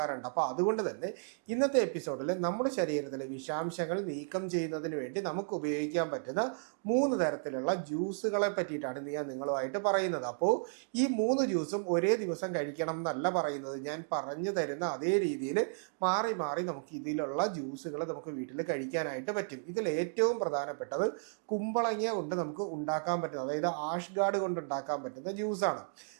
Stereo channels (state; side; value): silent; left; digital silence